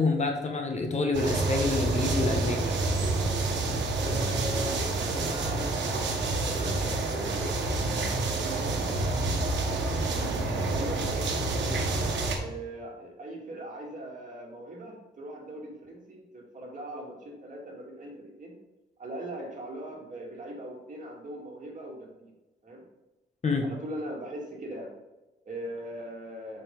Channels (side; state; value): both; normal; correlation 0.57